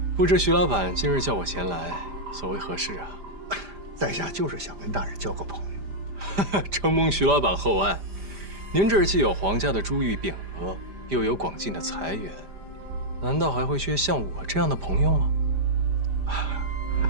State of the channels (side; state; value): left; late; 5.0 ms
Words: 不知徐老板今日叫我前来，所为何事啊？在下就是想跟大人交个朋友。承蒙徐老板厚爱，您这儿既有皇家的珠玉匾额，又有广进的财源，难道还会缺像我这样的朋友吗？